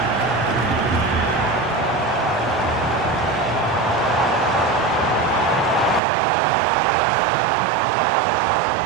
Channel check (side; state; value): left; drops out; at 6.0 s